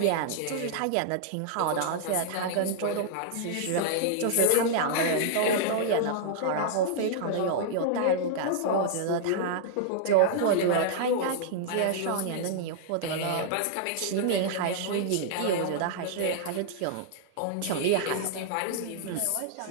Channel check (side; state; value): both; different; correlation -0.01